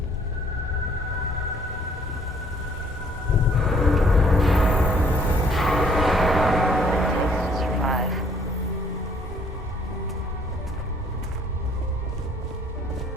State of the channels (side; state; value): both; normal; correlation 0.62